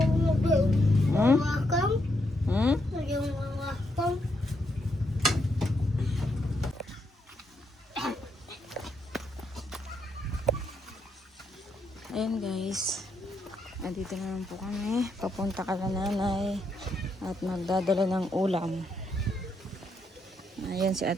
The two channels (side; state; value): both; normal; correlation 0.78